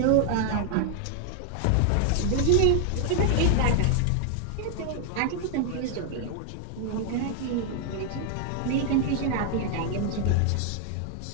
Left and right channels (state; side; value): different; both; correlation 0.00